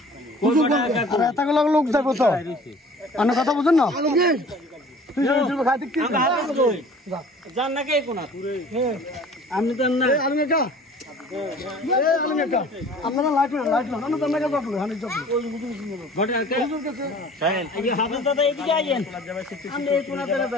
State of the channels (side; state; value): both; normal; correlation 0.47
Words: লোক যাবো তো অন্য কথা বুঝুন না। আমি তো আপনারা লাইট লাইট